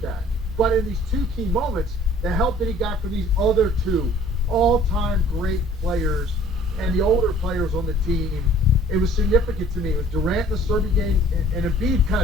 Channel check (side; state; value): both; normal; correlation 0.53